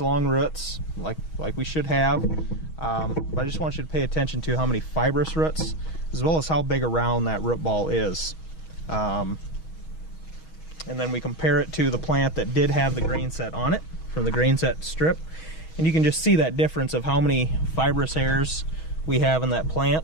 roots like we should have. But I just want you to pay attention to how many fibrous roots, as well as how big around that root ball is. And then we compare it to the plant that did have the Grain Set on it, from the Grain Set strip, and you can just see that difference of how many fibrous hairs we have in that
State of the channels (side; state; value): right; late; 6.3 ms